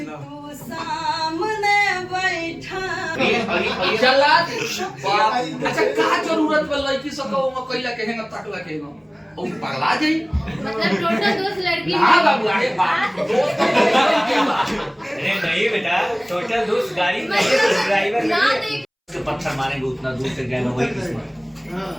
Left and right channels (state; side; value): identical; both; correlation 1.00